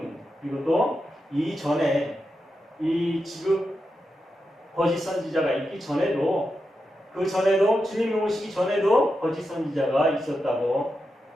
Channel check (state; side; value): normal; both; correlation 0.88